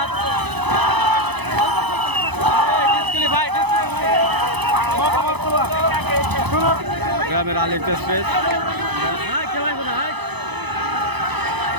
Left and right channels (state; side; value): late; left; 0.99 ms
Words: ডিসকুয়ালিফাই, ডিসকুয়ালিফাই। গ্রামের আলী এক্সপ্রেস